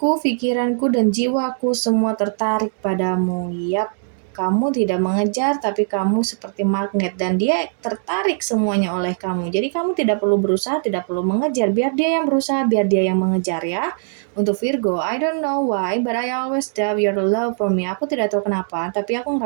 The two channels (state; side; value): silent; left; digital silence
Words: pikiranku, dan jiwaku semua tertarik padamu. Yap, kamu tidak mengejar, tapi kamu seperti magnet dan dia tertarik semuanya oleh kamu. Jadi kamu tidak perlu berusaha, tidak perlu mengejar. Biar dia yang berusaha, biar dia yang mengejar ya. Untuk Virgo, I don't know why, but I always doubt your love for me. Aku tidak tahu kenapa, tapi aku